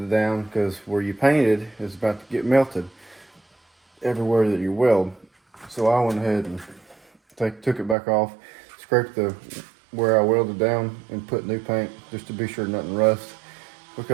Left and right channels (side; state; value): left; drops out; at 8.0 s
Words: down, because where you painted is about to get melted everywhere that you weld. So I went ahead and took it back off, scraped the where I welded down, and put new paint just to be sure nothing rusts,